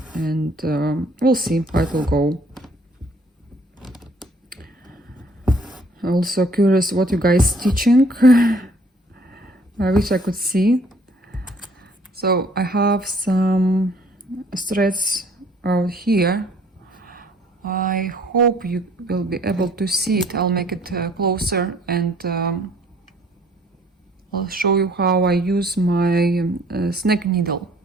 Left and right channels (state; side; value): normal; both; correlation 0.59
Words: and we'll see how it will go. Also curious what you guys stitching. I wish I could see. So I have some threads out here. I hope you will be able to see it. I'll make it closer, and I'll show you how I use my snake needle.